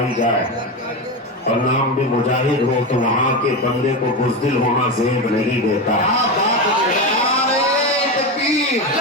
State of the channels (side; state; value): both; normal; correlation 0.17